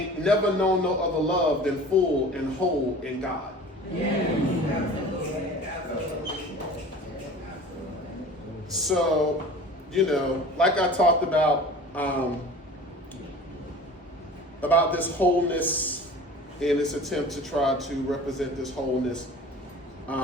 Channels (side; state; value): both; normal; correlation 0.41